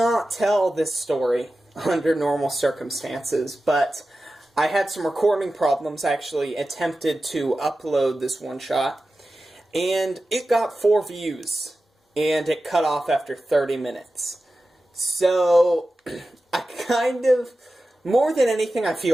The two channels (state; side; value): normal; both; correlation 0.94